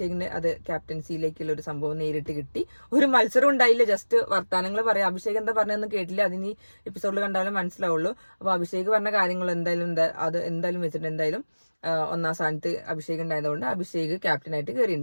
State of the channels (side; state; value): both; inverted; correlation -1.00